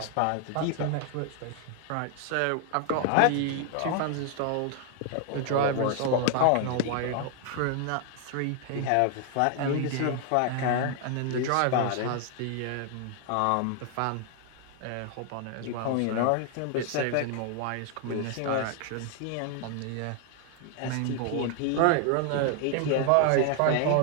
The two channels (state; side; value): different; both; correlation 0.00